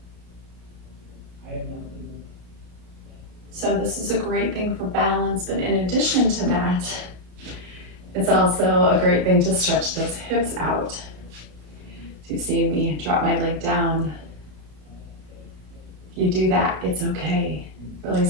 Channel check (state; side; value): late; left; 33 ms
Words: So this is a great thing for balance, but in addition to that, it's also a great thing to stretch those hips out. So you see me drop my leg down. If you do that, it's okay.